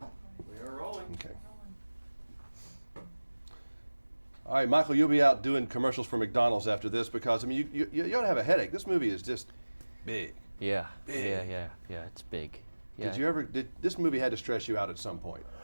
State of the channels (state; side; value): inverted; both; correlation -1.00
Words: We are rolling. Okay. All right, Michael, you'll be out doing commercials for McDonald's after this because, I mean, you ought to have a headache. This movie is just big. Yeah. Big. Yeah, it's big. Yeah. This movie had to stress you out at some point?